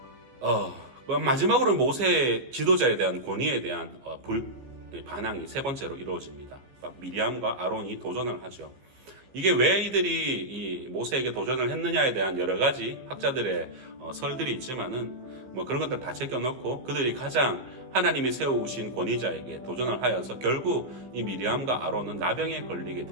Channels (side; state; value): left; late; 15 ms